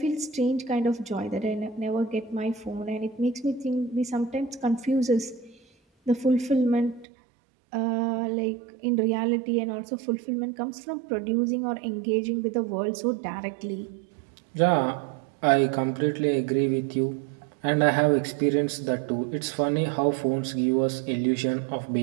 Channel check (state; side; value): drops out; left; at 7.1 s